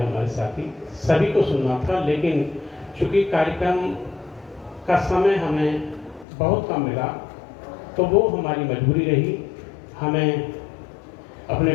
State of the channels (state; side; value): drops out; right; at 6.2 s